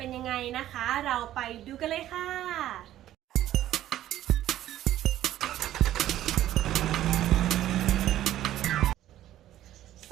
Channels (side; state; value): left; quieter; 13.0 dB